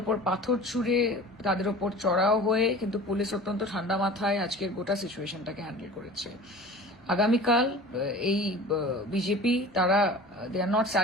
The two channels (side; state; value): both; normal; correlation 0.39